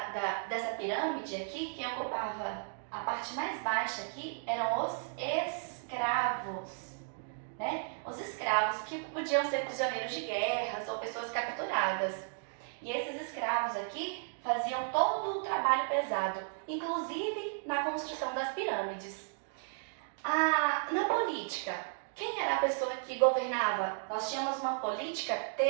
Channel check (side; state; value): left; silent; digital silence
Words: pirâmide aqui, quem ocupava a parte mais baixa aqui eram os escravos, né? Os escravos que podiam ser prisioneiros de guerras ou pessoas capturadas. E esses escravos aqui faziam todo o trabalho pesado, inclusive na construção das pirâmides. Na política, quem era a pessoa que governava? Nós tínhamos uma política